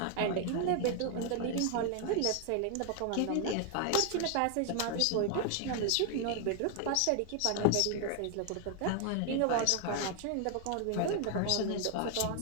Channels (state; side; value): different; both; correlation 0.00